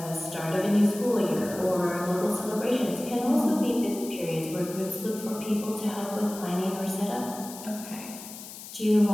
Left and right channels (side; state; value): left; noise; hiss, 13 dB below the sound